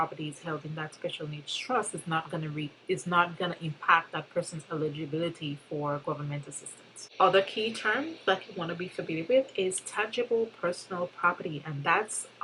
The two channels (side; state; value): both; identical; correlation 1.00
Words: is held in that special needs trust is not going to impact that person's eligibility for government assistance. Other key terms that you want to be familiar with is tangible personal property, and that's